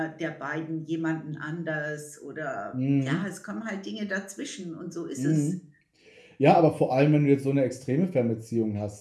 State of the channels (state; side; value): identical; both; correlation 1.00